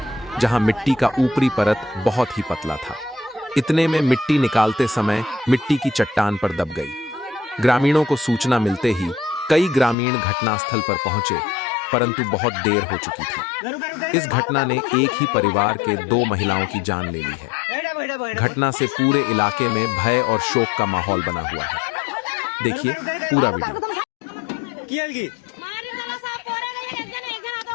जहां मिट्टी का ऊपरी परत बहुत ही पतला था। इतने में मिट्टी निकालते समय मिट्टी की चट्टान पर दब गई। ग्रामीणों को सूचना मिलते ही कई ग्रामीण घटनास्थल पर पहुंचे, परंतु बहुत देर हो चुकी थी। इस घटना ने एक ही परिवार के 2 महिलाओं की जान ले ली है। घटना से पूरे इलाके में भय और शोक का माहौल बना हुआ है। देखिए पूरा वीडियो।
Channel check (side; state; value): right; drops out; at 10.0 s